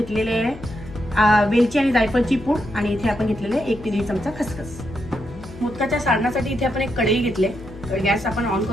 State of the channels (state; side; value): noise; left; hum, 16 dB below the sound